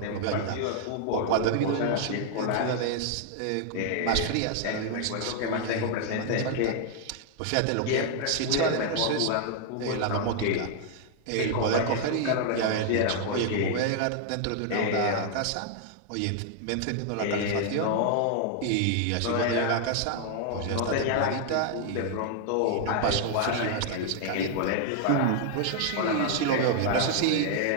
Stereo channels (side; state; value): both; different; correlation 0.00